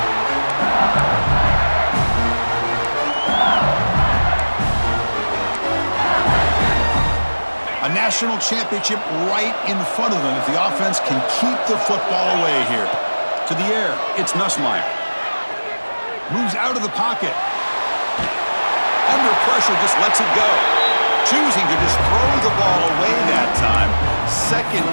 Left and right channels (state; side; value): inverted; both; correlation -1.00